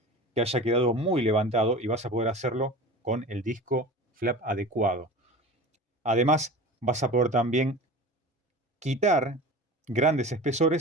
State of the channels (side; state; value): both; normal; correlation 0.35